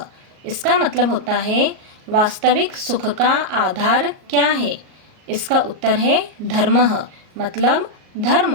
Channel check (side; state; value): left; late; 38 ms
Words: इसका मतलब होता है वास्तविक सुख का आधार क्या है। इसका उत्तर है धर्मः मतलब